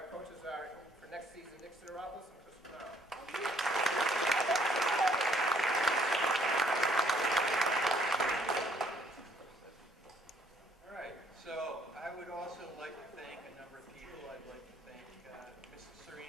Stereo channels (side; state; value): both; normal; correlation 0.65